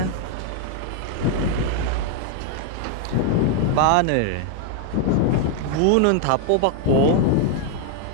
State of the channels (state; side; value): different; both; correlation 0.00